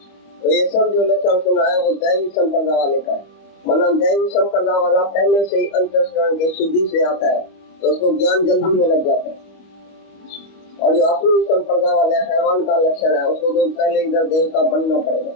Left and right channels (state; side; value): late; right; 25 ms